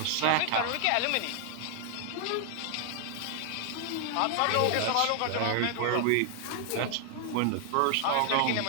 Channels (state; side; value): different; both; correlation 0.00